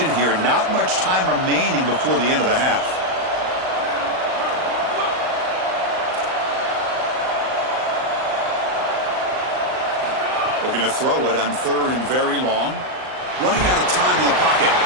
here. Not much time remaining before the end of the half. Looking to throw it on third and very long. Running out of time in the pocket.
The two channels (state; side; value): late; left; 38 ms